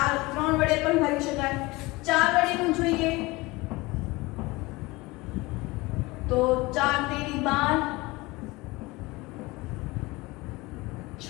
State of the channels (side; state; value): right; quieter; 22.4 dB